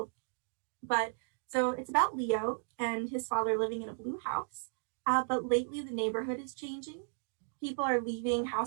But so it's about Leo and his father living in a blue house. But lately the neighborhood is changing. People are leaving,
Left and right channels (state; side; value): silent; left; digital silence